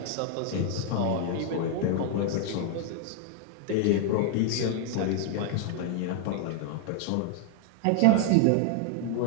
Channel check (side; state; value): both; different; correlation 0.00